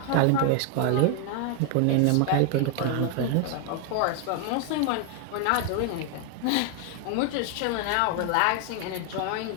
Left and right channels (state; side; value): different; both; correlation 0.00